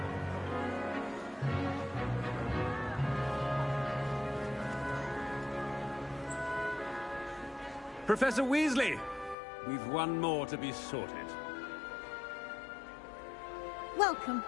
Professor Weasley, we've one more to be sorted. Welcome.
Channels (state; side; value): drops out; right; at 9.3 s